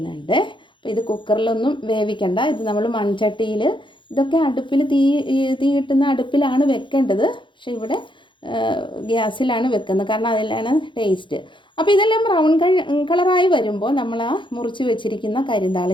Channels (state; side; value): late; right; 0.23 ms